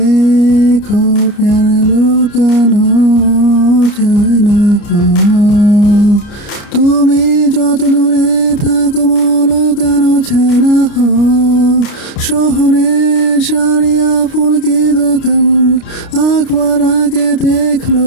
प्यार लुकानो যায় না তুমি যত দূরে থাকো লুকানো যায় না শহরে সারিয়া ফুল কি দোকান একবার আগে দেখলো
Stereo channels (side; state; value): right; late; 29 ms